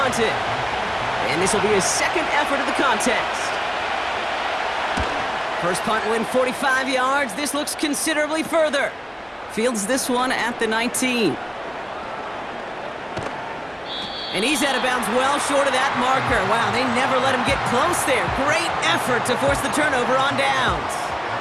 it. And this will be his 2nd effort of the contest. First punt win 45 yards. This looks considerably further. Fields this one at the 19. And he's out of bounds well short of that marker. Wow, they never let him get close there. Great effort to force the turnover on downs.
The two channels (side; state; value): both; identical; correlation 1.00